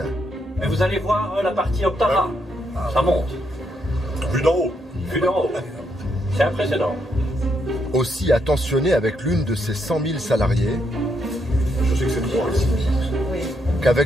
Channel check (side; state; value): both; normal; correlation 0.77